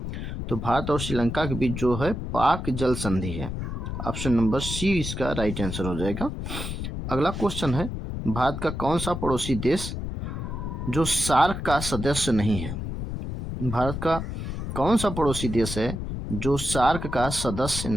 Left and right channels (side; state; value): left; noise; rumble, 5 dB below the sound